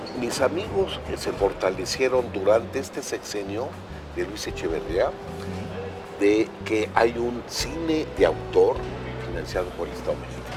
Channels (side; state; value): both; identical; correlation 1.00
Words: Mis amigos se fortalecieron durante este sexenio de Luis Echeverría, de que hay un cine de autor financiado por el Estado mexicano.